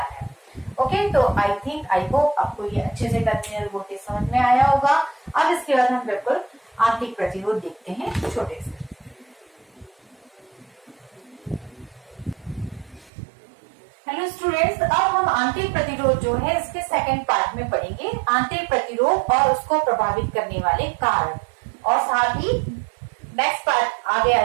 है। ओके, तो आई होप आपको ये अच्छे से टर्मिनल वोल्टेज समझ में आया होगा। अब इसके बाद हम बिल्कुल आंतरिक प्रतिरोध देखते हैं छोटे से। हेलो स्टूडेंट्स, अब हम आंतरिक प्रतिरोध जो है इसके सेकंड पार्ट में पढ़ेंगे, आंतरिक प्रतिरोध और उसको प्रभावित करने वाले कारण, और साथ ही नेक्स्ट पार्ट आगे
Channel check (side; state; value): left; drops out; at 13.1 s